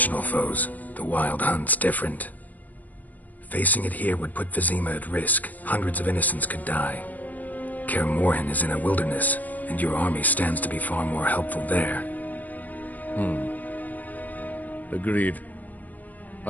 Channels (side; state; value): right; late; 0.080 ms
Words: foes, the Wild Hunt's different. Facing it here would put Vizima at risk. Hundreds of innocents could die. Kaer Morhen is in a wilderness, and your army stands to be far more helpful there. Agreed.